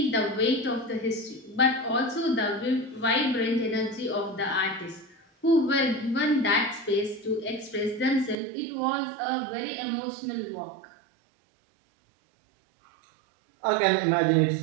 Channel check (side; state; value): left; drops out; at 8.3 s